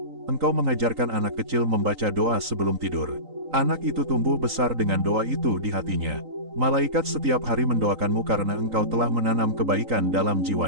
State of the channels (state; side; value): late; left; 3.9 ms